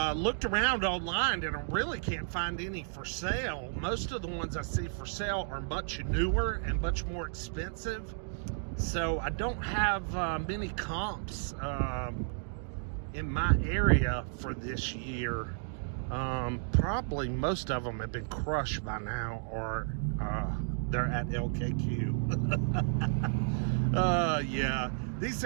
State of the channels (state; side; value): silent; left; digital silence